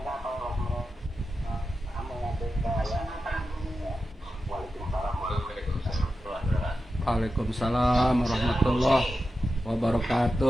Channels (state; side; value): normal; both; correlation 0.91